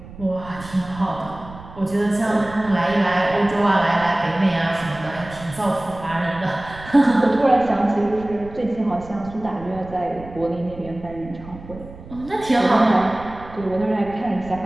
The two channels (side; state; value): right; noise; rumble, 16 dB below the sound